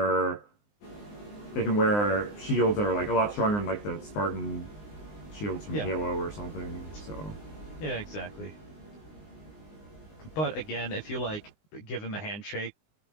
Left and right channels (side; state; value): right; late; 19 ms